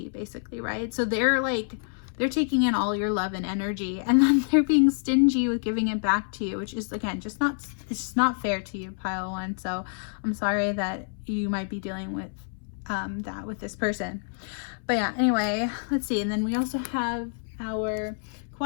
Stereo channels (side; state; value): right; silent; 60 dB below the other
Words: basically, right? So they're taking in all your love and energy, and then they're being stingy with giving it back to you, which is, again, it's just not fair to you, pile one. So I'm sorry that you might be dealing with that with this person. But yeah, anyway, let's see. And then we also have our